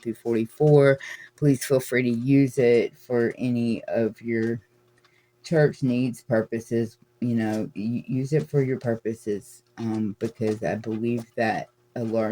through 44. Please feel free to use it for any of your church needs, purposes. Use it for your purposes, because I believe that a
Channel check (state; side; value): identical; both; correlation 1.00